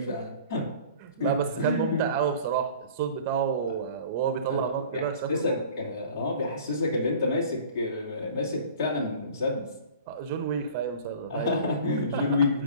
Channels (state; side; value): inverted; both; correlation -0.44